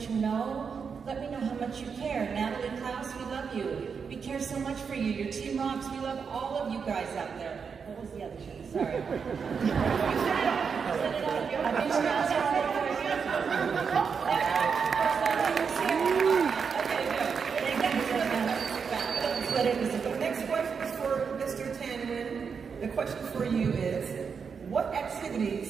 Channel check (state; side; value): quieter; left; 6.1 dB